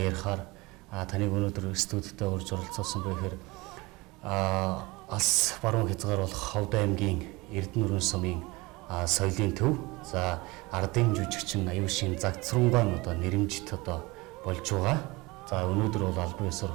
ярихаар таныг өнөөдөр студидтэй урьж оролцуулсан бэ гэхээр алс баруун хязгаар болох Ховд аймгийн Эрдэнэ сумын соёлын төв за ардын жүжигчин Аюушийн Загцрунгаан одоо нэрэмжит одоо болж байгаа. За өнөөдөр бол албан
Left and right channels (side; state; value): left; quieter; 23.4 dB